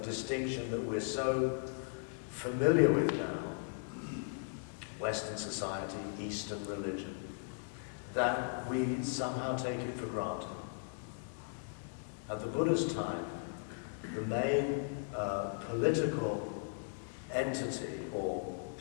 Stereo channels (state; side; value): silent; right; 53 dB below the other